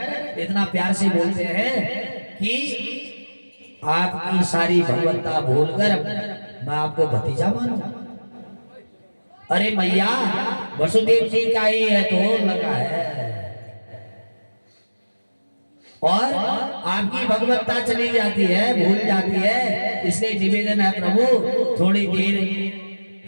इतना प्यार से बोलते हैं कि आपकी सारी भगवत्ता भूलकर मैं आपको भतीजा मानूं। अरे मैया वसुदेव जी का ही है तो लगा है और आपकी भगवत्ता चली जाती है, भूल जाती है। इसलिए निवेदन है प्रभु थोड़ी देर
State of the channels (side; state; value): both; inverted; correlation -1.00